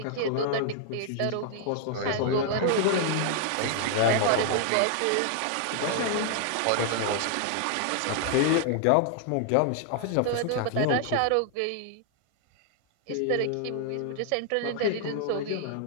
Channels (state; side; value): different; both; correlation 0.00